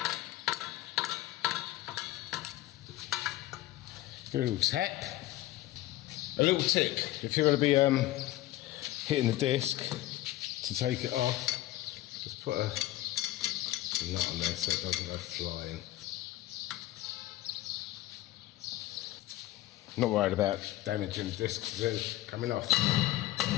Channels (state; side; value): quieter; right; 16.0 dB